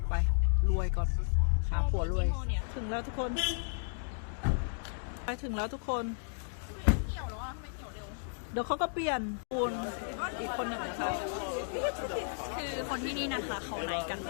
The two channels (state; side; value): silent; right; digital silence